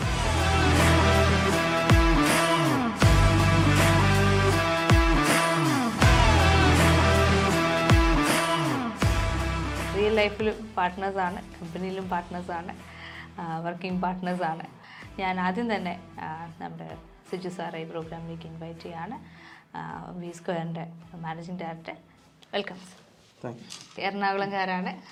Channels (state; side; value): identical; both; correlation 1.00